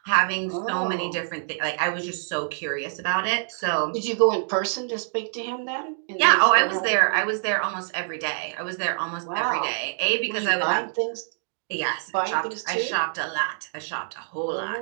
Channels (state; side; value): silent; left; digital silence